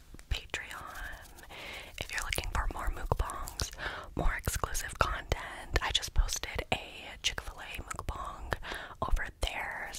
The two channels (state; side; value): identical; both; correlation 1.00